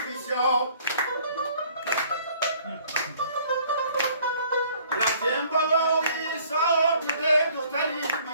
رفتیم بالای سار دیده دختری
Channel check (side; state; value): both; inverted; correlation -0.57